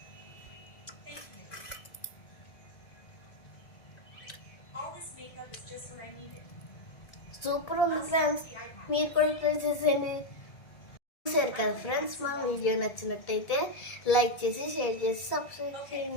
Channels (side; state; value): right; late; 1.7 ms